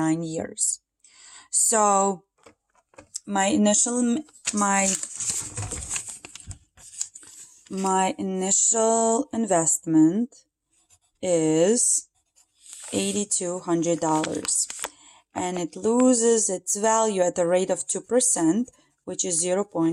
years. So my initial investment is $8,200, and it loses its value at the rate of 2%, which is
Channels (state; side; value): identical; both; correlation 1.00